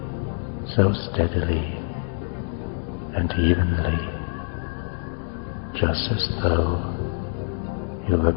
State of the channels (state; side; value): silent; right; 62 dB below the other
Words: so steadily and evenly, just as though you were